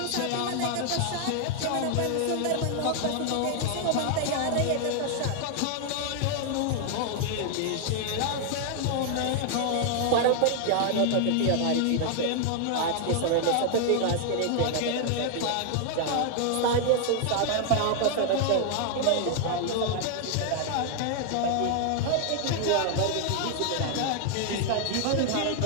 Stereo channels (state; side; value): different; both; correlation 0.00